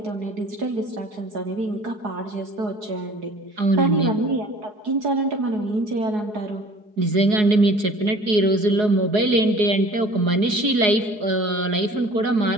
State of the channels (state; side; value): late; left; 4.8 ms